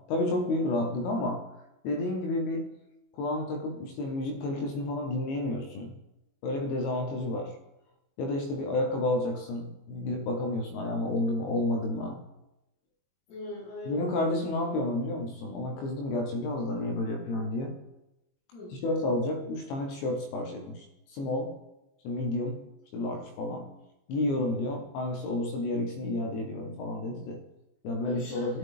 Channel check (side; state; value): right; late; 22 ms